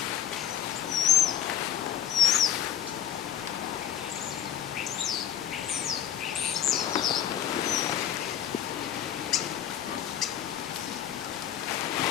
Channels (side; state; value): right; quieter; 10.0 dB